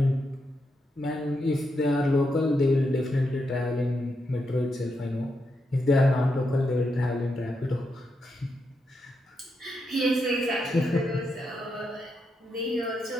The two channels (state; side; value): normal; both; correlation 0.83